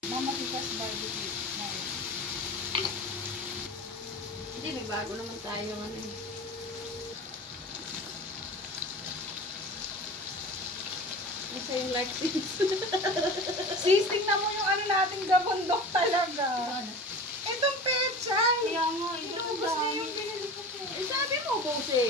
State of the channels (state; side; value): normal; both; correlation 0.35